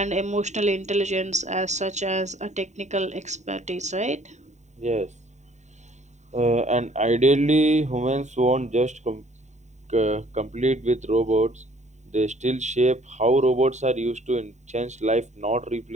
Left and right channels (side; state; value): left; late; 0.34 ms